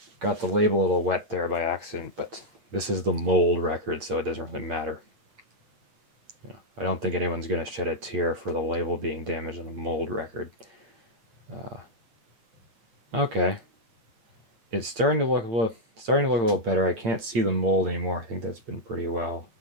label a little wet there by accident, but this is the mold record, so it doesn't really matter. I don't think anyone's going to shed a tear for the label being damaged on a mold record. Okay. It's starting to look a little better. I can't see the mold anymore. I think that's been pretty well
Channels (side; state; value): left; late; 8.8 ms